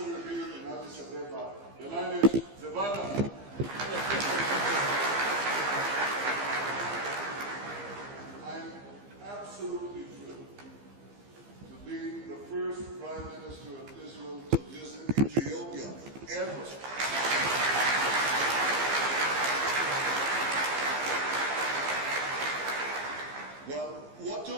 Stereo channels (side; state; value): left; late; 15 ms